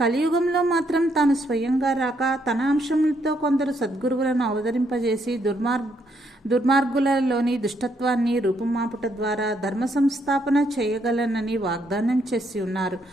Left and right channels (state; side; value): normal; both; correlation 0.74